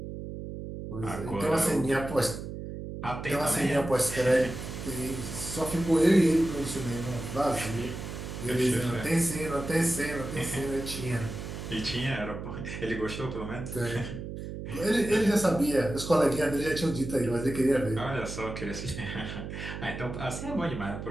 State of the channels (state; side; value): noise; right; hum, 8 dB below the sound